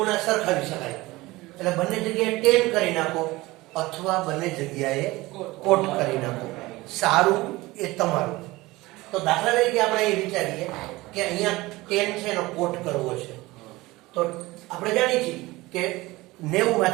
સરખાવી શકાય. એટલે બંને જગ્યાએ tan કરી નાખો અથવા બંને જગ્યાએ cot કરી નાખો. સારું એ તમારું. તો દાખલા તરીકે આપણે એ વિચારીએ કે અહીંયા tan છે એનો cot કરવો છે. તો આપણે જાણીએ છીએ કે 90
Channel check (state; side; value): quieter; left; 20.2 dB